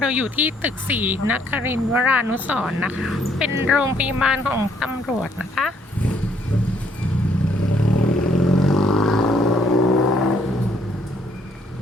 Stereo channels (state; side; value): normal; both; correlation 0.67